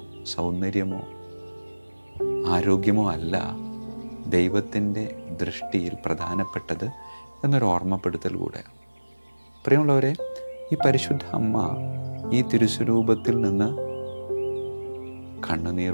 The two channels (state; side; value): inverted; both; correlation -1.00